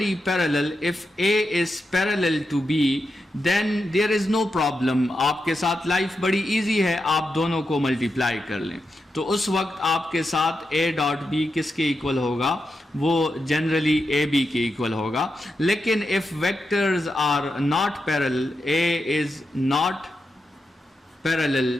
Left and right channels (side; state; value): both; normal; correlation 0.87